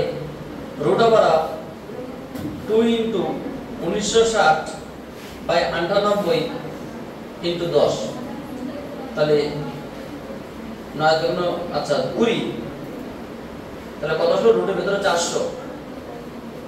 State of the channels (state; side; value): identical; both; correlation 1.00